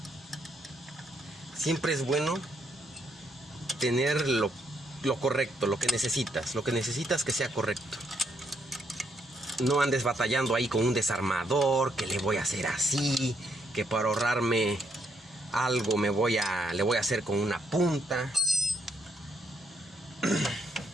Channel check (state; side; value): normal; both; correlation 0.74